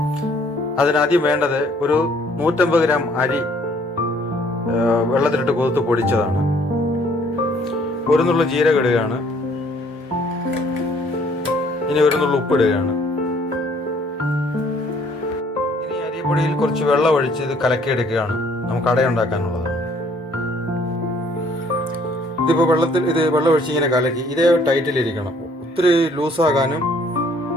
അതിനാദ്യം വേണ്ടത് ഒരു 150 ഗ്രാം അരി വെള്ളത്തിലിട്ട് കുതിർത്ത് പൊടിച്ചതാണ്. ഒരു നുള്ള ജീരകം ഇടുകയാണ്. ഇനി ഒരു നുള്ള ഉപ്പിടുകയാണ്. ഇനി അരിപ്പൊടിയിൽ കുറച്ച് വെള്ളം ഒഴിച്ച് ഇത് കലക്കിയെടുക്കുകയാണ്. നമുക്ക് അടയുണ്ടാക്കാനുള്ളതാണ്. ഇതിപ്പോൾ വെള്ളം ഒഴിച്ച് ഇങ്ങനെ കലക്കി ഇതേ ടൈറ്റിലിരിക്കണം. ഒത്തിരി ലൂസാകാനും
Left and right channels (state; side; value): normal; both; correlation 0.61